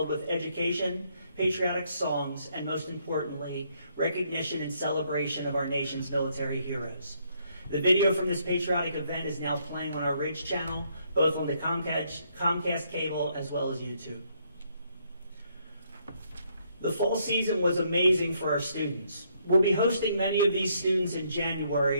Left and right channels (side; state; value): both; inverted; correlation -0.71